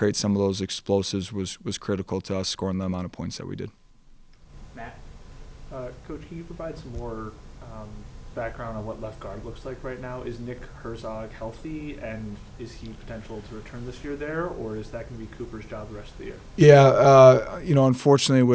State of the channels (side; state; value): both; identical; correlation 1.00